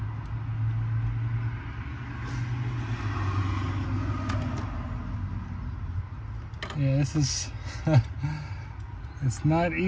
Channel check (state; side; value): identical; both; correlation 1.00